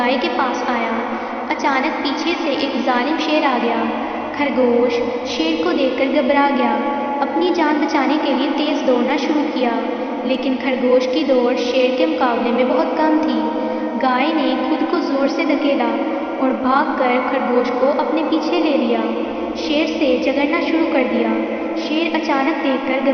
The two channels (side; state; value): both; identical; correlation 1.00